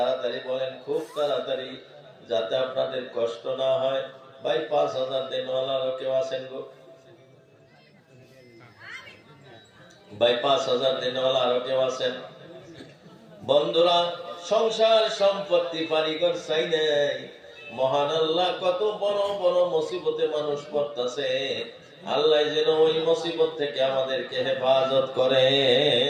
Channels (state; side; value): identical; both; correlation 1.00